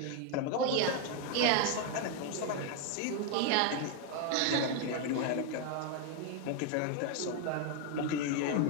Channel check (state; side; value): different; both; correlation 0.01